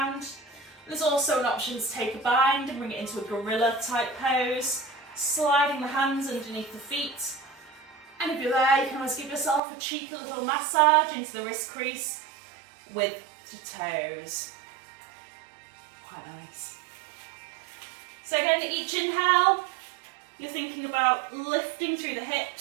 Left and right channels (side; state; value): left; drops out; at 9.6 s